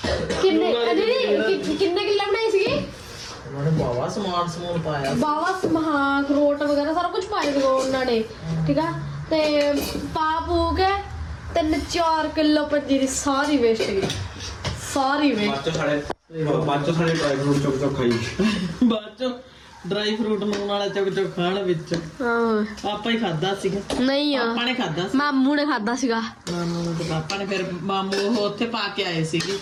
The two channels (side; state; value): both; identical; correlation 1.00